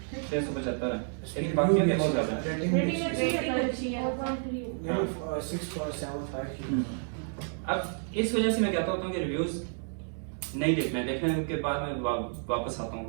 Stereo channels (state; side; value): silent; left; 58 dB below the other